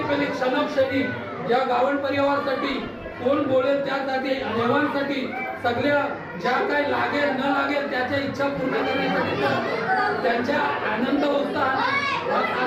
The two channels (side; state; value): both; identical; correlation 1.00